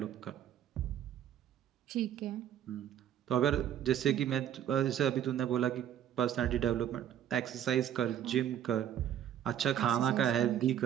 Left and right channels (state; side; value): quieter; left; 10.3 dB